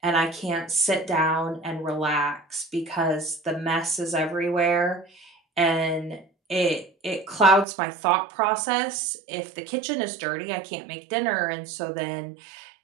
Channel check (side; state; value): left; drops out; at 7.7 s